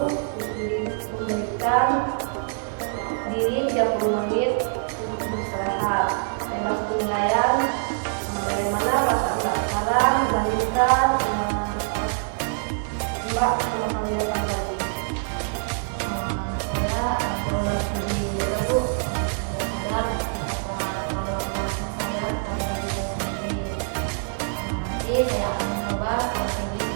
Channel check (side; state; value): left; silent; 62 dB below the other